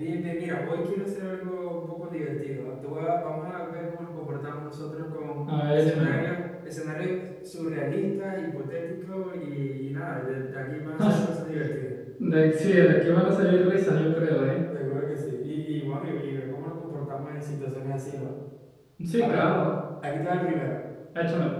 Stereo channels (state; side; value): identical; both; correlation 1.00